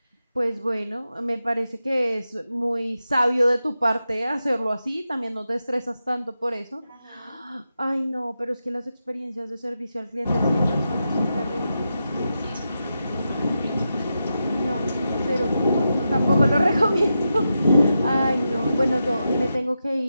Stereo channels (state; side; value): inverted; both; correlation -0.88